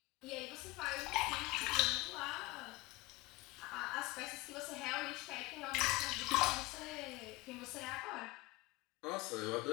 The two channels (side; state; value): right; quieter; 21.6 dB